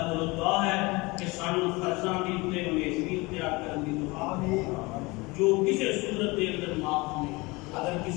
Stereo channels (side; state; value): right; quieter; 24.2 dB